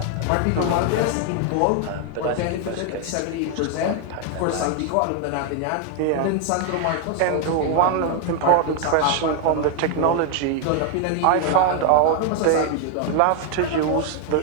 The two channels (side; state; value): both; different; correlation 0.00